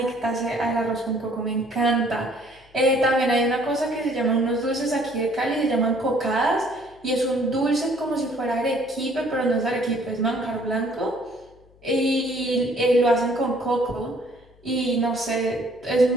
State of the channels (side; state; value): left; noise; hum, 28 dB below the sound